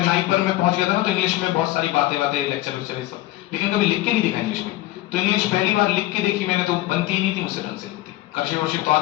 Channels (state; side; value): quieter; right; 16.4 dB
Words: नाइपर में पहुंच गया था ना, तो इंग्लिश में बहुत सारी बातें लेक्चर सब, लेकिन कभी लिख के नहीं देखा इंग्लिश में। तो इंग्लिश पहली बार लिख के देखी मैंने, तो बनती ही नहीं थी मुझसे ढंग से, लिखती कर्सिव वर्सिव तो